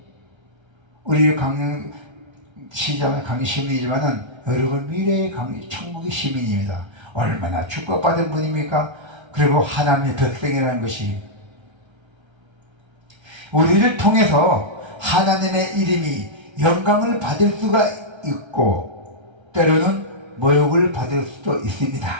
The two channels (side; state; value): left; late; 1.3 ms